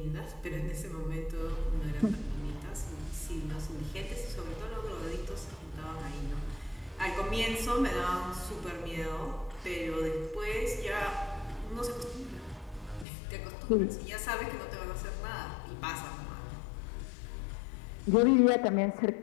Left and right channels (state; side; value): drops out; right; at 13.1 s